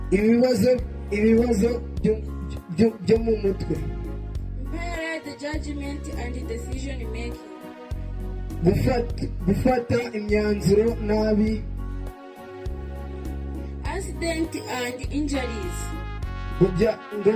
Ibibazo byo mu mutwe. Impaired judgment and decision making. Gufata imyanzuro nabi. Accident and injuries.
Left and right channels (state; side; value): identical; both; correlation 1.00